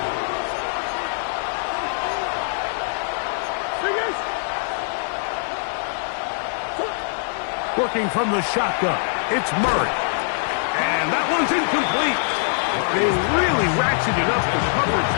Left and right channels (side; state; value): right; silent; 64 dB below the other